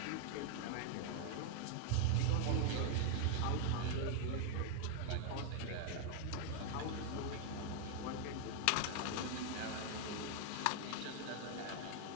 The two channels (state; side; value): different; both; correlation 0.00